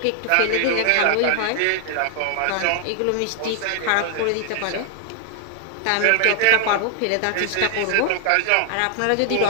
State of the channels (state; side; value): different; both; correlation 0.00